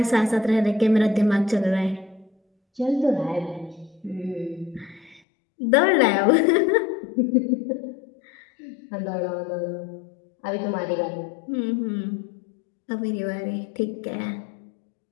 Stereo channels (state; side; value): drops out; right; at 5.2 s